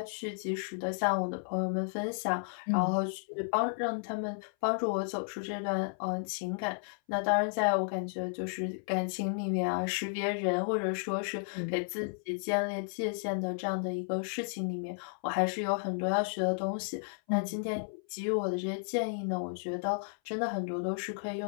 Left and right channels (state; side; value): silent; right; 56 dB below the other